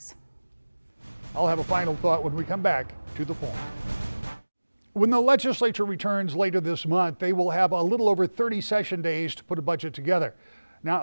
I'll have a final thought when we come back to the point. When the legislature returns later this month, they will have a little over 30 session days to put a budget together.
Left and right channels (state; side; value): inverted; both; correlation -1.00